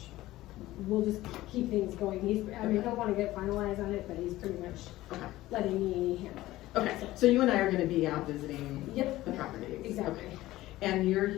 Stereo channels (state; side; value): quieter; right; 16.5 dB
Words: we'll just keep things going. I don't want to get finalized on it, but he's pretty much letting me handle it. Okay, so you and I are going to be out visiting the properties. Exactly. Okay. And you're